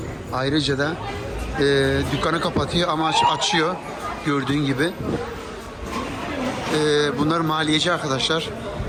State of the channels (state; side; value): identical; both; correlation 1.00